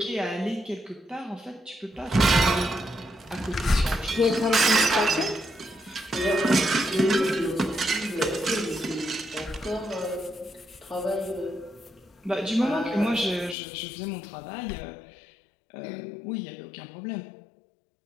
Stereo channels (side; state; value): right; drops out; at 13.6 s